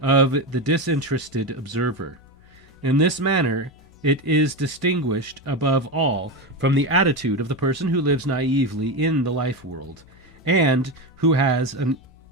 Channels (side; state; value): both; normal; correlation 0.17